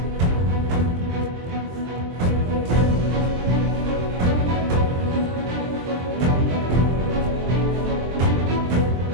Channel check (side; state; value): left; late; 23 ms